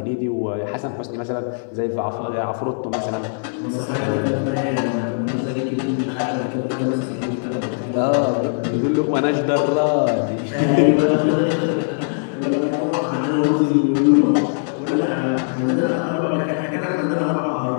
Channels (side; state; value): right; silent; digital silence